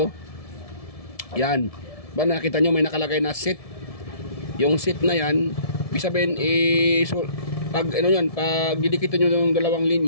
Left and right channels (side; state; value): right; late; 1.7 ms